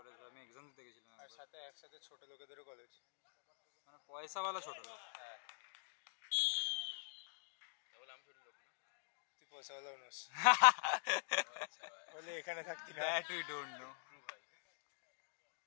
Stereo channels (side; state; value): right; silent; digital silence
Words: আমি এক্সাম দিতে গেছিলাম আর একবার। সাথে একসাথে ছোট লোকেদেরও কলেজ। মানে পয়সাওয়ালা ছোট লোক। হ্যাঁ, তাহলে আমি ছোট লোক না। তুই পয়সাওয়ালা নোস, আচ্ছা ভাই। হলে এখানে থাকতি না। That we don't know. True ভাই।